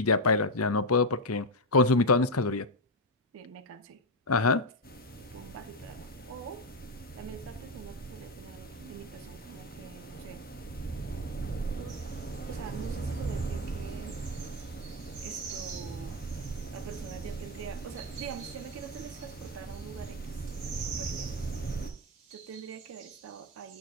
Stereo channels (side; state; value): both; normal; correlation 0.05